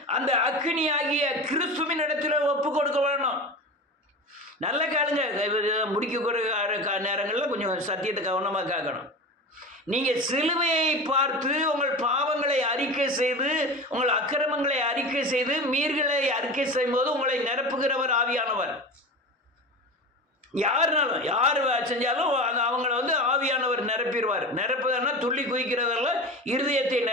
அந்த அக்கினி ஆகிய கிறிஸ்துவின் இடத்துல ஒப்பு கொடுக்க வேணும். நல்ல காலுங்க. முடிக்கக்கூடிய நேரங்களில் கொஞ்சம் சத்தியத்தை கவனமாக கேட்கணும். நீங்கள் சிலுவையை பார்த்து உங்கள் பாவங்களை அறிக்கை செய்து, உங்கள் அக்கிரமங்களை அறிக்கை செய்து, மீறுகளை அறிக்கை செய்யும்போது உங்களை நிரப்புகிறவர் ஆவியானவர். யாருனாலும் யார் செஞ்சாலும் அவங்கள ஆவியானவர் நிரப்பிடுவார். நிரப்புதன்னா துள்ளி குதிக்கிறதல்ல, இருதயத்தை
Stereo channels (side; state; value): both; normal; correlation 0.28